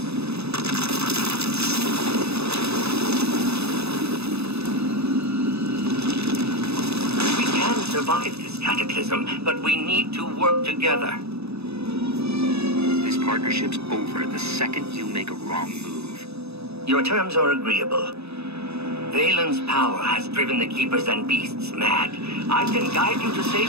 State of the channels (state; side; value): late; left; 0.79 ms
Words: We can survive this cataclysm, but we need to work together. This partnership's over the second you make a wrong move. Your terms are agreeable. Vaylin's power has driven the Keepers and Beasts mad. I can guide you to